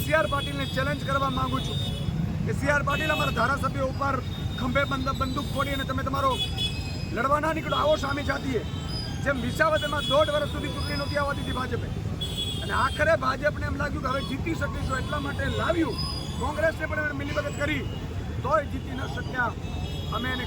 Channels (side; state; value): both; identical; correlation 1.00